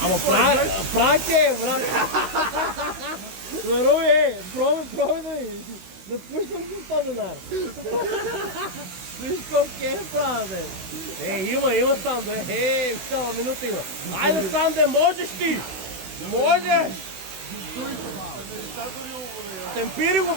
Ама прак е, брат. Здорови, пробай да пуснем с 100 денара. Виж колко е правя, бе. Има Санде. Цяла минута има. Айде, Санде, можеш ти! Можеш! Темпири го,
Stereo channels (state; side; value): late; left; 16 ms